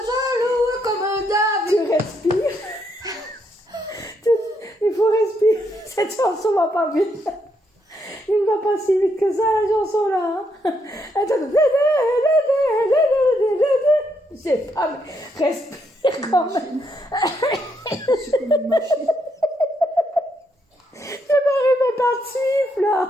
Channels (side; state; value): both; normal; correlation 0.76